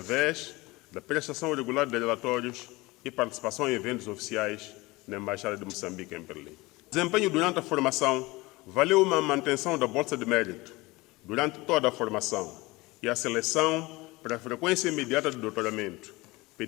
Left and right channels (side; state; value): right; quieter; 22.0 dB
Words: da prestação regular de relatórios e participação em eventos oficiais na Embaixada de Moçambique em Berlim. O desempenho durante a formação valeu uma manutenção da bolsa de mérito durante toda a formação e a seleção para a frequência imediata do doutoramento,